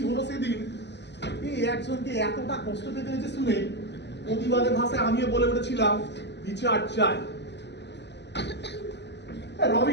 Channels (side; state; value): right; late; 0.50 ms